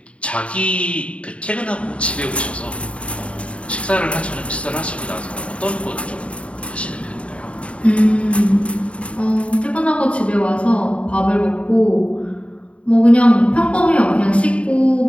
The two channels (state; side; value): late; right; 0.062 ms